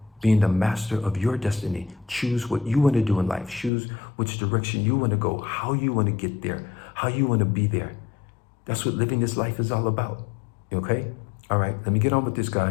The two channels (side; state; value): right; drops out; at 3.7 s